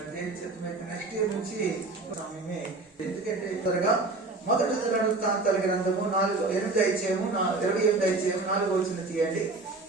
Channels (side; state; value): left; quieter; 3.4 dB